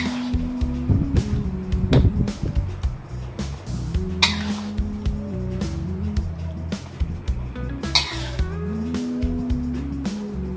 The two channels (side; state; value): both; identical; correlation 1.00